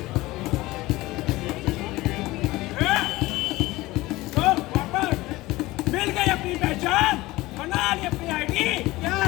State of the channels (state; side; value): quieter; right; 19.3 dB